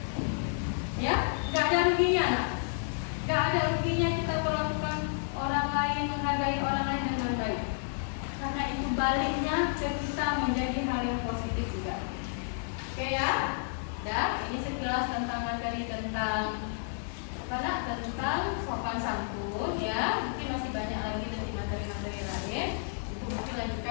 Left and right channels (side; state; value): right; silent; 57 dB below the other